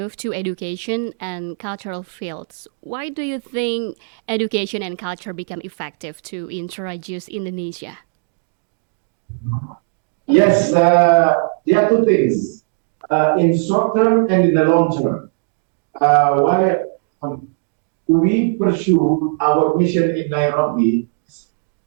to education and cultural fields. Why do you think education and culture become effective to introduce Indonesia? Yes, there are two things in short term and in the long term. why we pursue our mission in Nairobi.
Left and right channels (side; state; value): left; silent; digital silence